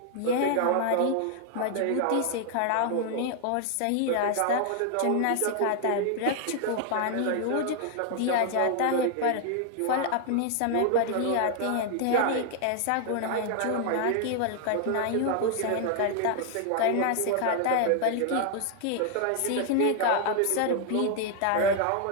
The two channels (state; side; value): different; both; correlation 0.00